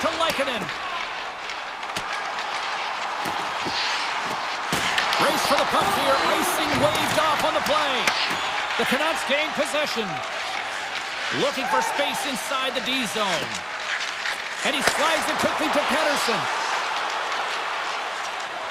Lehkonen. Race for the puck here. Icing waved off on the play. The Canucks gain possession. Looking for space inside the D zone. And he slides it quickly to Pettersson.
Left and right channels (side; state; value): both; identical; correlation 1.00